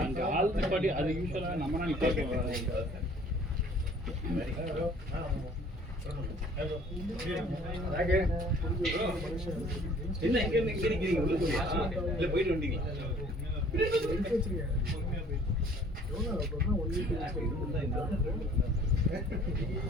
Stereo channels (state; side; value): normal; both; correlation 0.54